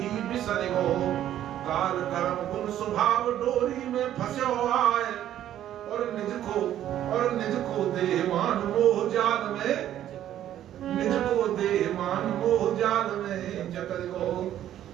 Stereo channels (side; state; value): left; quieter; 11.7 dB